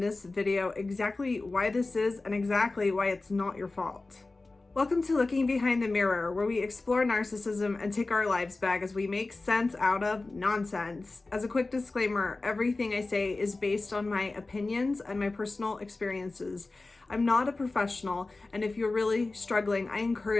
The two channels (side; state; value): right; quieter; 3.4 dB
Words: video exactly why this is and exactly why it's not your fault. Welcome to Looking Behind the Mirror, where we explore narcissism and take our lives back as we make sense out of nonsense. As a quick disclaimer, everything I say is based on my opinions and my personal experiences. I'm not a professional, and if you're really struggling, I